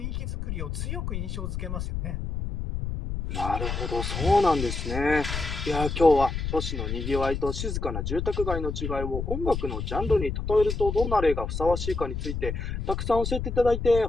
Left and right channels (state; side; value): noise; left; rumble, 4 dB below the sound